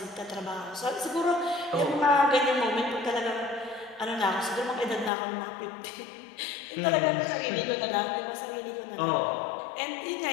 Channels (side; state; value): right; drops out; at 5.1 s